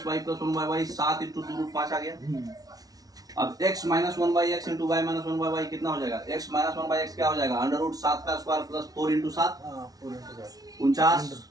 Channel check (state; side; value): late; left; 0.18 ms